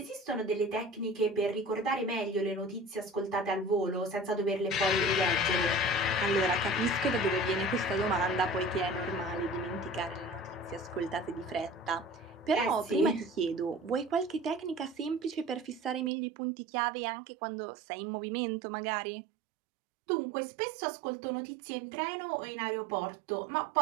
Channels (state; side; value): drops out; left; at 16.1 s